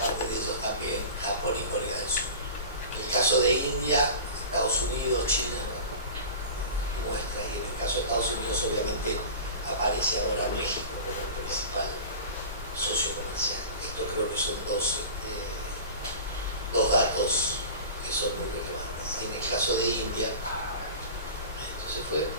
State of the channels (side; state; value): both; inverted; correlation -0.35